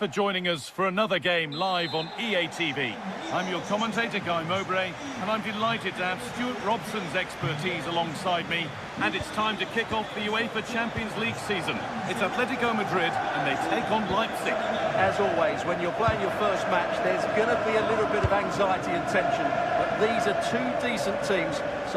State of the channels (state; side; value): identical; both; correlation 1.00